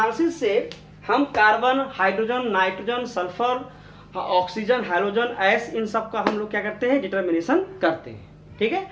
से हम carbon, hydrogen, nitrogen, sulphur, oxygen, hydrogen, S, इन सब का हम लोग क्या करते हैं, डिटर्मिनेशन करते हैं। ठीक है,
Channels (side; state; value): both; identical; correlation 1.00